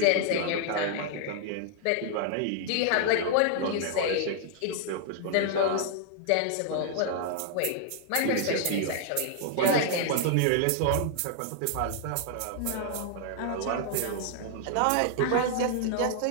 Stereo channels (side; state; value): both; different; correlation 0.00